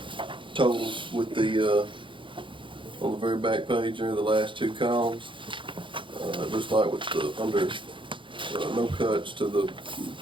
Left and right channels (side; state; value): left; late; 0.24 ms